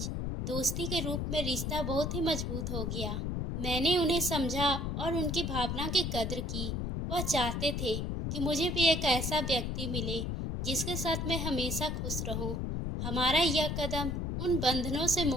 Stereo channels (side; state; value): left; noise; rumble, 1 dB below the sound